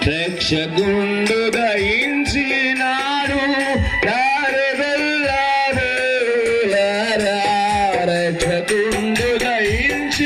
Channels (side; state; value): both; identical; correlation 1.00